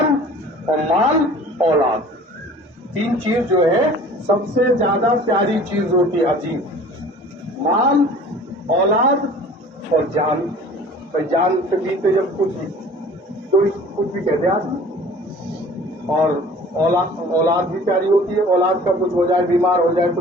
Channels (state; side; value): normal; both; correlation 0.47